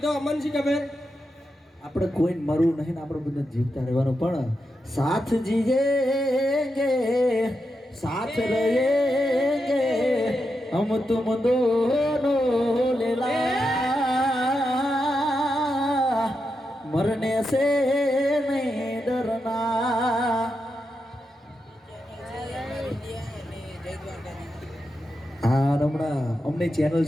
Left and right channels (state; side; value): normal; both; correlation 0.86